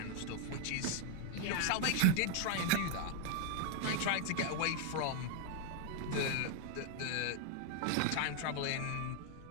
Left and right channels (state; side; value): different; both; correlation 0.01